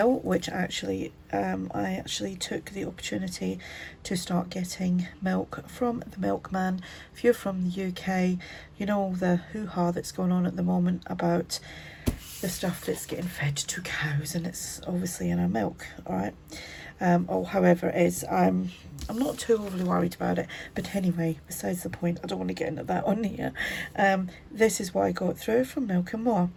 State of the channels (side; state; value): both; identical; correlation 1.00